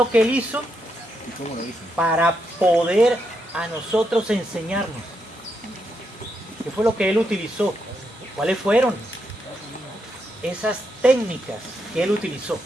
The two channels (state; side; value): normal; both; correlation 0.81